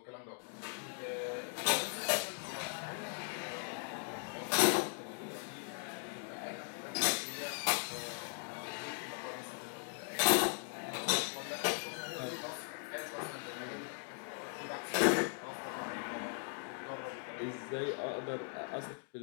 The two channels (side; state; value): right; silent; 52 dB below the other